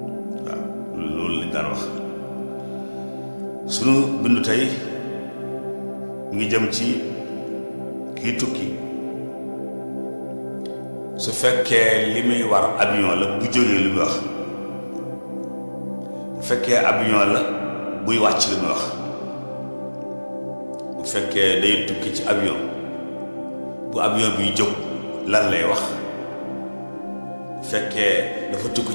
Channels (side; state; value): both; inverted; correlation -1.00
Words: waaw loolu lañ daan wax. sunu bindu tey mu ngi jëm ci kii tukki su fekkee li muy war avion la bu jógee li muy wax bu fekkee avion la buy wàcc li muy wax bu fekkee day tukki ci avion bu avion biy jóg lan lay wax bu fekkee dafa tukki